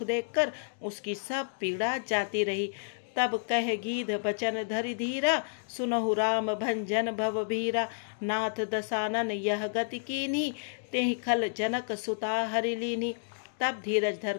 देखकर उसकी सब पीड़ा जाती रही। तब कह गीध बचन धरि धीरा, सुनहु राम भंजन भव भीरा। नाथ दसानन यह गति कीन्ही, तेहि खल जनक सुता हरि लीन्ही। तब धीरज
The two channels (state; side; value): silent; right; digital silence